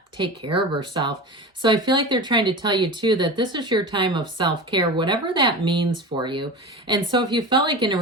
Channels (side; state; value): both; normal; correlation 0.29